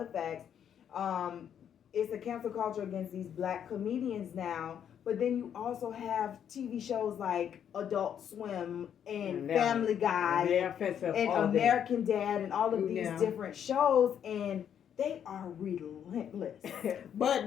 facts. It's a cancel culture against these black comedians now, but then you also have TV shows like Adult Swim and Family Guy and American Dad and all of these different shows, and they are relentless. but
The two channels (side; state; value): right; quieter; 8.9 dB